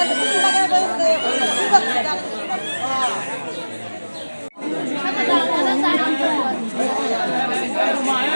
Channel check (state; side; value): inverted; both; correlation -1.00